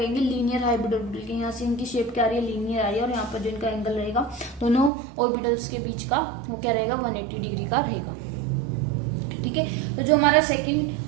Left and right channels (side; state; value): left; drops out; at 4.9 s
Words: लीनियर हाइब्रिड ऑर्बिटल के। यहाँ से इनकी शेप क्या आ रही है, लीनियर आ रही है, और यहाँ पर जो इनका एंगल रहेगा दोनों ऑर्बिटल्स के बीच का वो क्या रहेगा, 180 डिग्री का रहेगा। ठीक है, तो जो हमारा